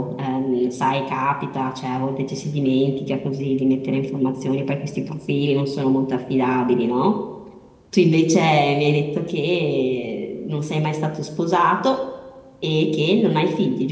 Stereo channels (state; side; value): identical; both; correlation 1.00